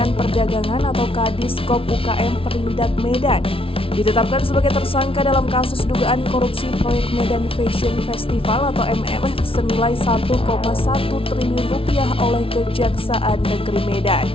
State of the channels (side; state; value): right; late; 0.26 ms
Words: Perdagangan atau Kadiskop UKM Perindak Medan. Ditetapkan sebagai tersangka dalam kasus dugaan korupsi proyek Medan Fashion Festival atau MFF senilai 1,1 triliun rupiah oleh Kejaksaan Negeri Medan.